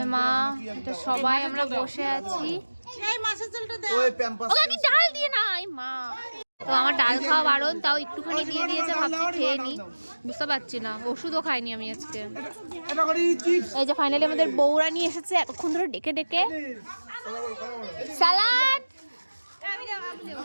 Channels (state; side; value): inverted; both; correlation -1.00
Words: মা, এটা সবাই আমরা বসে আছি। ওকে কি ডাল দিয়ে নাই মা? তো আমার ডাল খাওয়া বারণ, তাও একটুখানি দিয়ে দিয়েছে, ভাবছি খেয়ে নি, বুঝতে পারছি না। ওষুধও খাইনি আমি আজকে। এই যে ফাইনালি আমাদের বউরা নিয়ে এসেছে এতক্ষণ ধরে ডেকে ডেকে সালাদ।